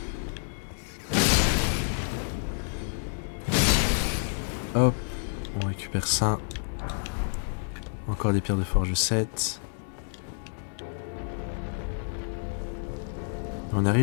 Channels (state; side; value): silent; right; digital silence